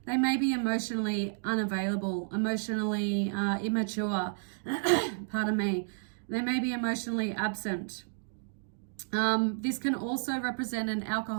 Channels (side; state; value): left; silent; digital silence